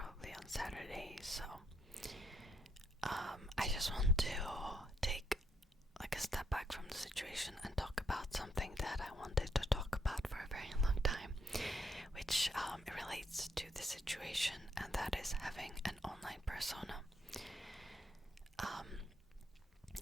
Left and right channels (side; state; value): both; normal; correlation 0.74